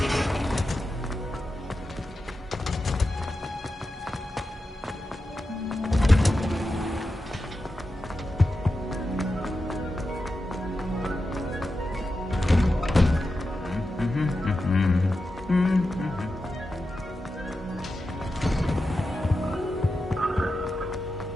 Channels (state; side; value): normal; both; correlation 0.90